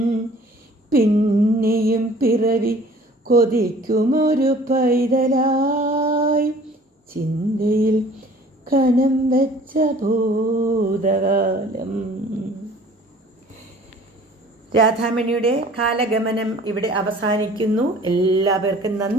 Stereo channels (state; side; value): normal; both; correlation 0.50